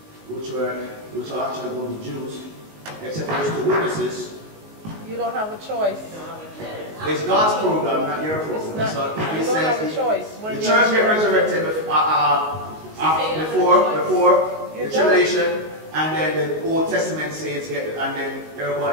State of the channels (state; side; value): late; left; 19 ms